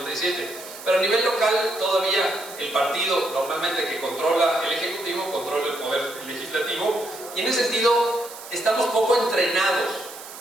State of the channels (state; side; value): noise; right; hiss, 15 dB below the sound